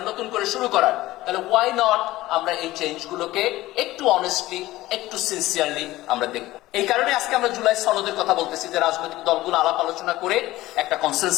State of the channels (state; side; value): quieter; right; 17.1 dB